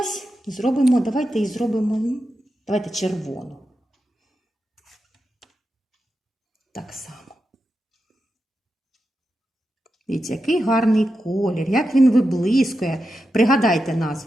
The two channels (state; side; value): normal; both; correlation 0.89